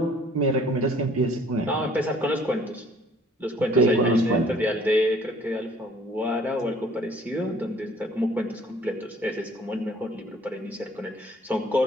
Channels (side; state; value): both; normal; correlation 0.56